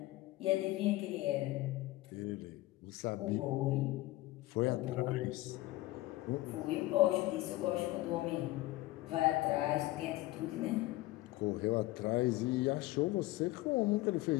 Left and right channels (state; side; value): quieter; right; 18.1 dB